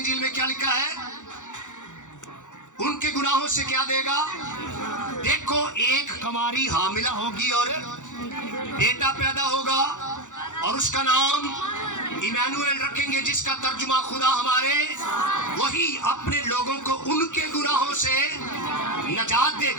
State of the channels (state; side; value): late; right; 0.86 ms